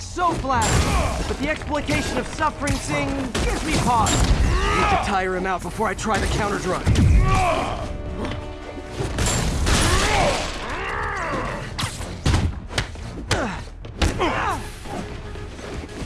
flattering. But the exploitation of suffering thing gives me pause. Need to tire him out before I try the counterdrug.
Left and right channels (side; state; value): both; identical; correlation 1.00